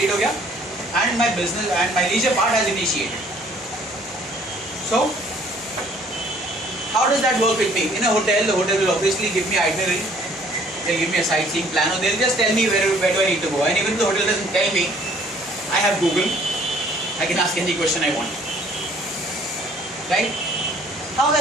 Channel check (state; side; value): normal; both; correlation 0.58